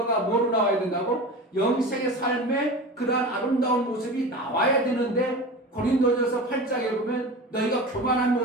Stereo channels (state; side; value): normal; both; correlation 0.31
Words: 뭐로 나와야 된다고? 영생의 삶의 그러한 아름다운 모습이 나와야 되는데 고린도전서 8장에 보면 너희가 교만한